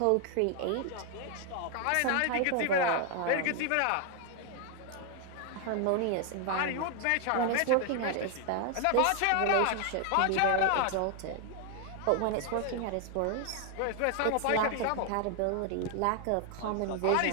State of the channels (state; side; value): different; both; correlation 0.00